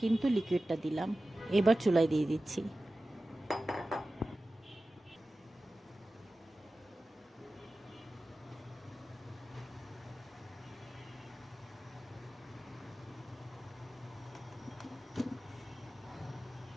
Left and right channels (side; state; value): both; normal; correlation 0.95